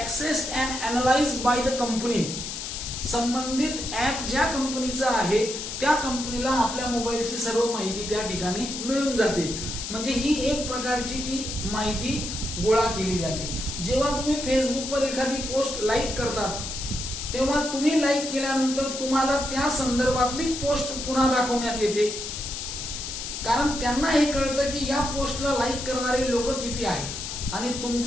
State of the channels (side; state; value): left; noise; hiss, 6 dB below the sound